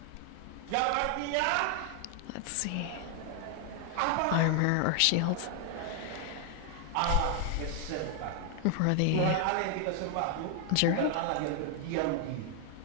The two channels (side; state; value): both; different; correlation 0.00